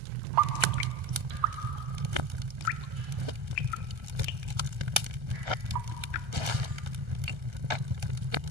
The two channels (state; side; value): late; left; 1.3 ms